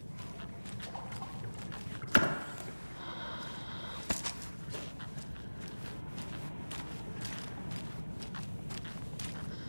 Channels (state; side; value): inverted; both; correlation -1.00